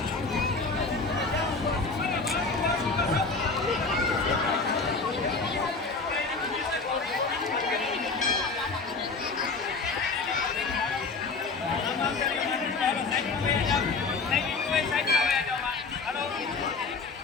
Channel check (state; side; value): quieter; right; 4.1 dB